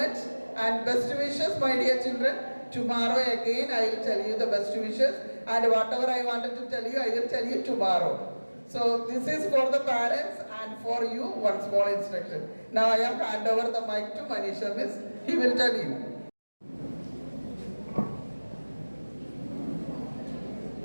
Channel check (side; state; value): both; inverted; correlation -1.00